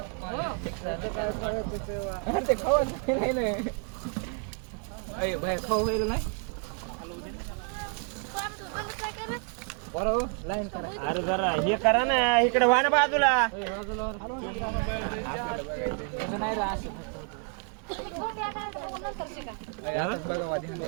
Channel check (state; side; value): quieter; left; 39.5 dB